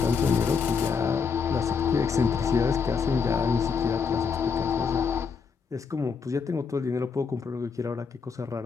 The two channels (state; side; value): quieter; right; 5.7 dB